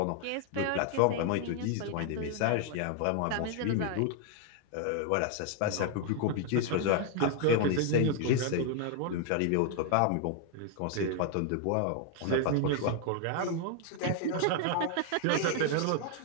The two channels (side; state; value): both; different; correlation 0.00